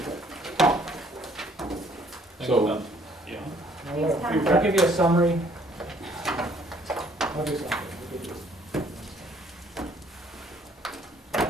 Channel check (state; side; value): normal; both; correlation 0.62